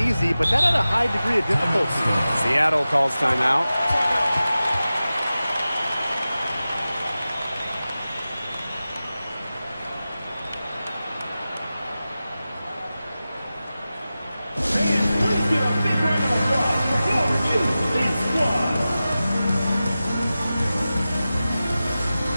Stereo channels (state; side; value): inverted; both; correlation -0.95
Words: but that had a high degree of difficulty. Seattle calls timeout.